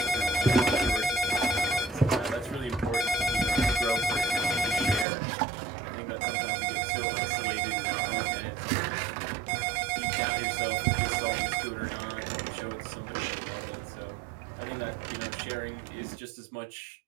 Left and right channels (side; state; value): left; drops out; at 5.1 s